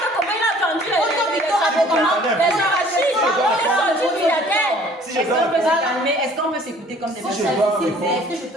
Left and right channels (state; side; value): normal; both; correlation 0.54